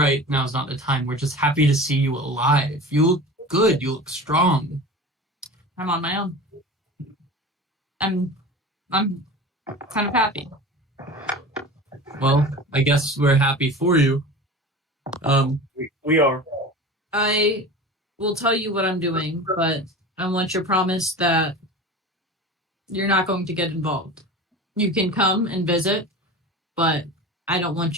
Now's not the time. We're just happy to see you alive. You look good. You look strong. I'm on my own. I'm kind of happy. Well, I guess we're happy for you. We are. I will tell you what I'm doing, but I want your promise that you're not going to get involved. You can come and visit, but I don't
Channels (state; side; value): normal; both; correlation 0.34